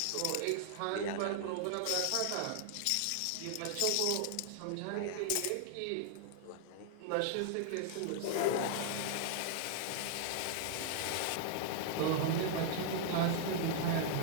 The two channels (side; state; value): both; different; correlation 0.00